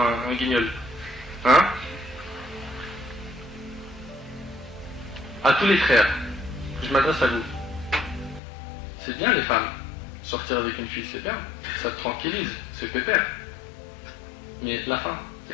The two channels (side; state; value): right; drops out; at 8.4 s